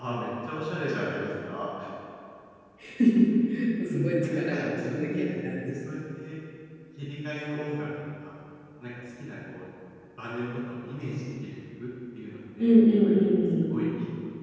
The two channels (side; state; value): both; identical; correlation 1.00